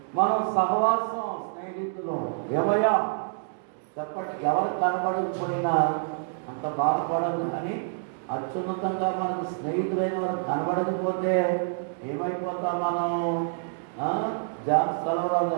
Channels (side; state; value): left; silent; digital silence